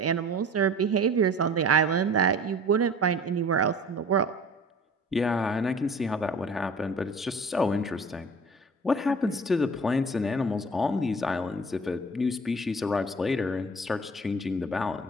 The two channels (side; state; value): both; normal; correlation 0.44